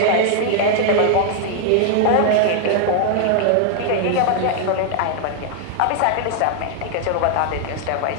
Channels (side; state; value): both; different; correlation 0.00